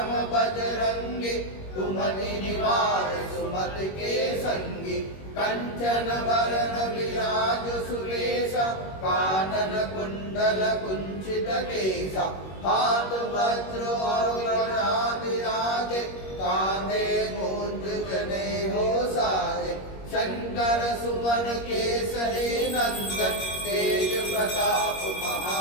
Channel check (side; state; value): right; late; 21 ms